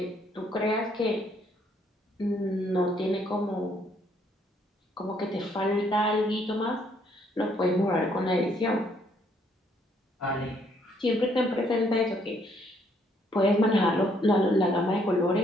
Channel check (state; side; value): normal; both; correlation 0.68